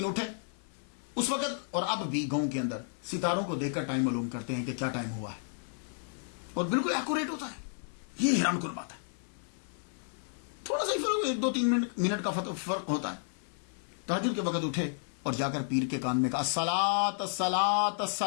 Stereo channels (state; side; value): silent; right; 56 dB below the other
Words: اٹھے. اس وقت اور اب بھی گاؤں کے اندر ستاروں کو دیکھ کر ٹائم معلوم کرتے ہیں کہ کیا ٹائم ہوا ہے، اور بالکل ایکوریٹ ہوتا ہے. یہ حیران کن بات ہے. تھوڑا سا ہی فرق، 1-2-3 منٹ کا فرق ہوتا ہے. تہجد کے وقت اٹھے اور جا کر پیر کے کان میں کہا الصلاۃ الصلاۃ